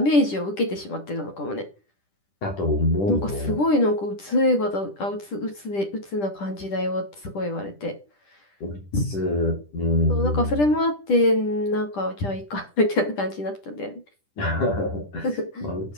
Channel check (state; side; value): late; right; 10 ms